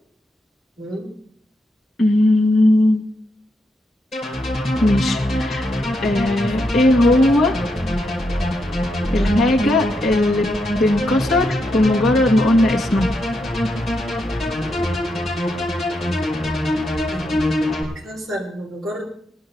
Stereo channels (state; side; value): normal; both; correlation 0.82